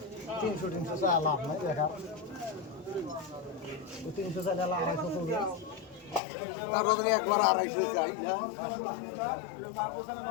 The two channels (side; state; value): right; drops out; at 6.2 s